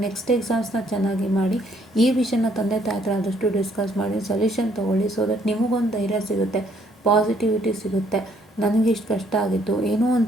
ನೆಕ್ಸ್ಟ್ ಎಕ್ಸಾಮ್ಸ್ನ ಚೆನ್ನಾಗಿ ಮಾಡಿ. ಈ ವಿಷಯನ ತಂದೆ ತಾಯಿ ಹತ್ರ ಆದಷ್ಟು ಡಿಸ್ಕಸ್ ಮಾಡಿ ಸೊಲ್ಯೂಷನ್ ತೊಗೊಳ್ಳಿ. ಸೊ ದಟ್ ನಿಮಗೊಂದು ಧೈರ್ಯ ಸಿಗುತ್ತೆ, ಪಾಸಿಟಿವಿಟಿ ಸಿಗುತ್ತೆ. ನನಗಿಷ್ಟು ಕಷ್ಟ ಆಗಿತ್ತು, ಏನೋ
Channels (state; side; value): normal; both; correlation 0.67